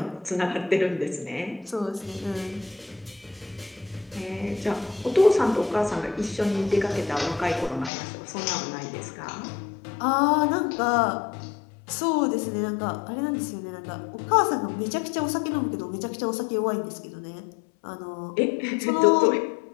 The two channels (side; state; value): right; drops out; at 7.9 s